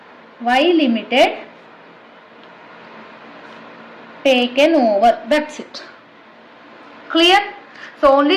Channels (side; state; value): both; identical; correlation 1.00